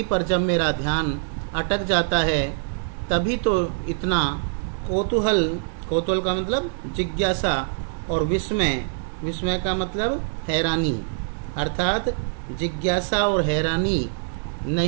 पर जब मेरा ध्यान अटक जाता है, तभी तो इतना कौतूहल का मतलब जिज्ञासा, और विस्मय का मतलब हैरानी, अर्थात जिज्ञासा और हैरानी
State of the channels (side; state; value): left; silent; digital silence